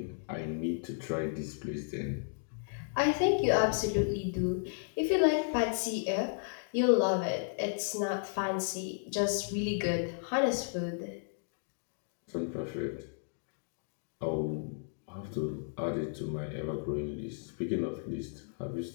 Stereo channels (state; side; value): silent; right; digital silence